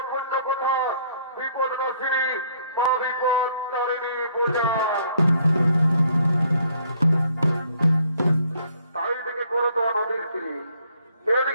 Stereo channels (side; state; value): both; inverted; correlation -0.64